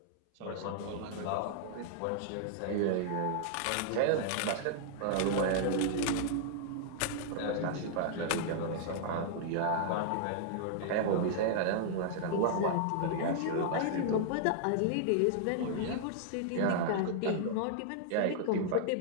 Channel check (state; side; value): different; both; correlation -0.01